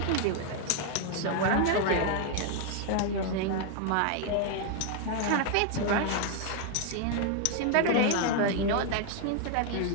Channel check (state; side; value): different; both; correlation 0.00